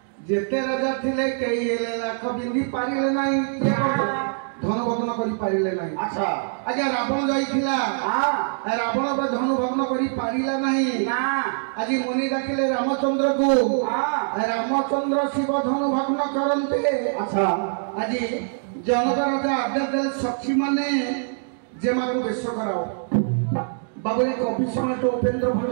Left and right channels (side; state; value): left; silent; digital silence